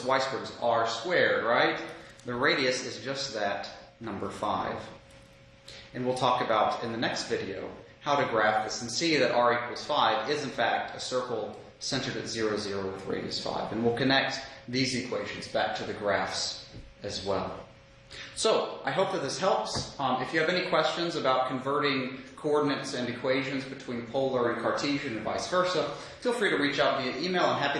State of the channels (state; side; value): identical; both; correlation 1.00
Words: y squared is r squared, right? The radius is just that, number 5. And we'll talk about in the next video how to graph this and see that r equals 5 is in fact a circle centered at 0, 0 with radius 5. And we'll connect these equations back to the graphs as well. So, I hope that this helps. If you have any questions about converting coordinates and equations between polar and Cartesian and vice versa, feel free to reach out via email. I'm happy